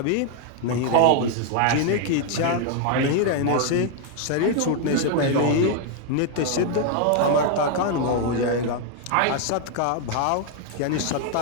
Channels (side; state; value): both; different; correlation 0.00